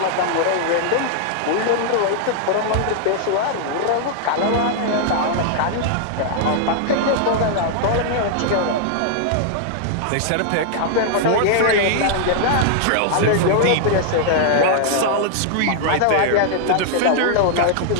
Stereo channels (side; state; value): both; different; correlation -0.01